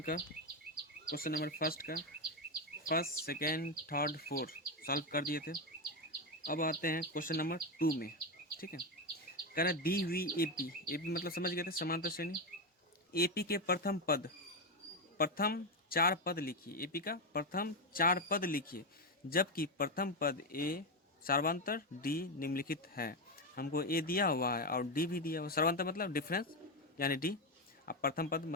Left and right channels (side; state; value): both; normal; correlation 0.09